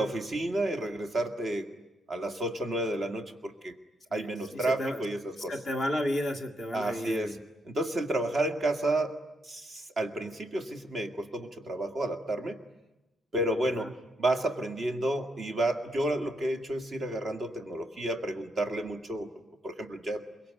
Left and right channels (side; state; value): both; normal; correlation 0.79